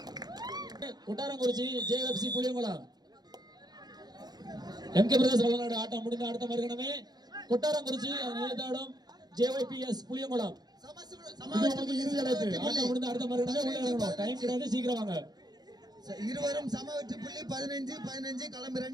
கொட்டாரங்குறிச்சி JFC Puliyankulam MK பிரதேச விளையாடு ஆட்டம் முடிந்த அடுத்த மறுகணமே கொட்டாரங்குறிச்சி நேதாடும் ஜேஒய்பிஎஸ் புளியங்குளம் இறுதி அழைப்பு. ஆட்டம் முடிந்த அடுத்த மறுகணமே உள்ள இறங்கணும். டைம் கிடையாது, சீக்கிரம் வாங்க. இருவரும் சம வெற்றி புள்ளி 15-15 களம்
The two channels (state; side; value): late; left; 0.19 ms